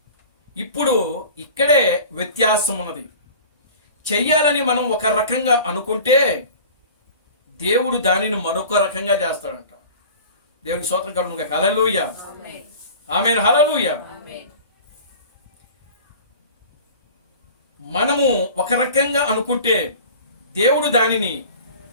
ఇక్కడే వ్యత్యాసం ఉన్నది. చెయ్యాలని మనం ఒక రకంగా అనుకుంటే దేవుడు దానిని మరొక రకంగా చేస్తాడంట. దేవునికి స్తోత్రం కలుగునుగాక. హల్లెలూయా. ఆమేన్. హల్లెలూయా. మనము ఒక రకంగా అనుకుంటే దేవుడు దానిని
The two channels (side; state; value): both; inverted; correlation -0.40